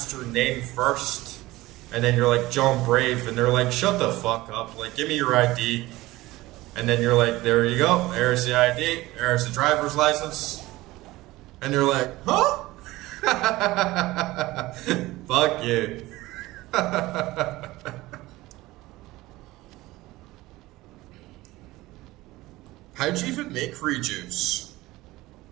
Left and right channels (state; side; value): quieter; left; 18.7 dB